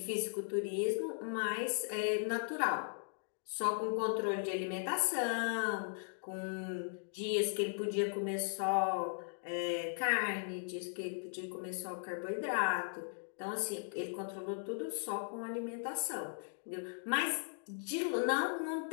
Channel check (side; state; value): right; silent; digital silence